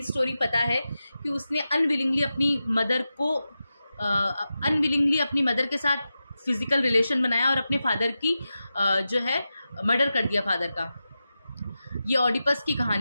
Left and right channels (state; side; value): inverted; both; correlation -0.92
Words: स्टोरी पता है कि उसने अनविलिंगली अपनी मदर के साथ फिज़िकल रिलेशन बनाया और अपने फादर की जो है मर्डर कर दिया फादर का. ये ऑडिपस की